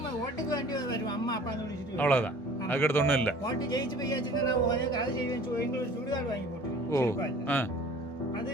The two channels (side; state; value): both; normal; correlation 0.47